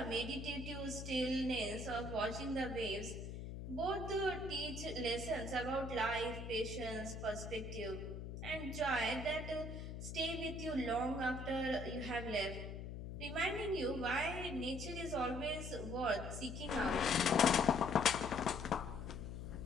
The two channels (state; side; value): noise; left; hum, 7 dB below the sound